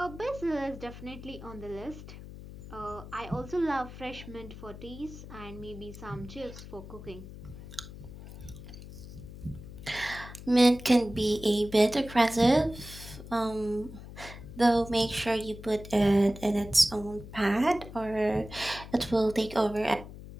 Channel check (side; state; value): left; noise; hum, 14 dB below the sound